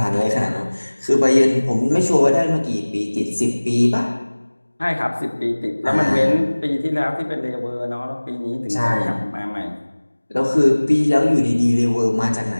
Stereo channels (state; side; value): inverted; both; correlation -1.00